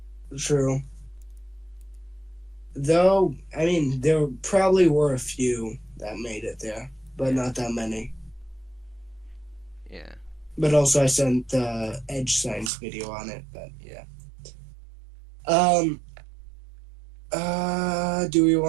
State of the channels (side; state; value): left; drops out; at 12.7 s